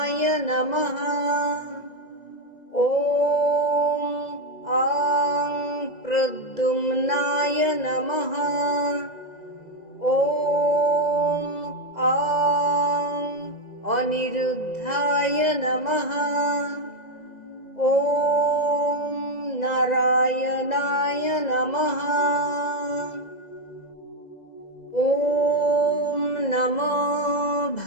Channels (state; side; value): late; right; 2.0 ms